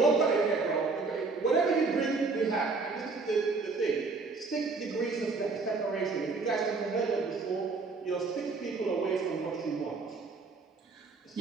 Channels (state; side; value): quieter; left; 4.1 dB